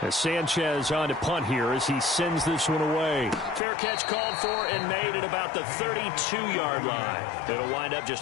As Sanchez on to punt here as he sends this one away. Fair catch called for and made at about the 32-yard line. It'll wind up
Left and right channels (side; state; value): right; drops out; at 3.6 s